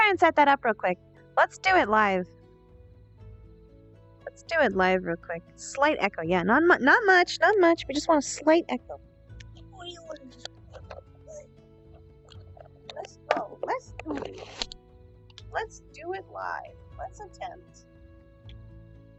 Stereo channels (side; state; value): both; identical; correlation 1.00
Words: and set that up real quick. Let's do it live. Let's do it live real quick. Slight echo, yeah, not much. We just want a slight echo. Let's go. Let's do it. Let's do it live. Let's attempt.